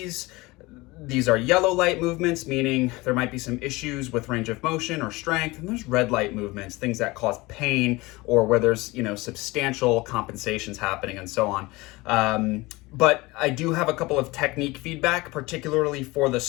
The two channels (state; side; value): quieter; right; 22.0 dB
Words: These are yellow light movements, meaning there might be some issues with range of motion or strength, and there's red light movements, things that cause pain or where there's, substantial compensations happening and so on. But I do have a couple of technique feedback, particularly for the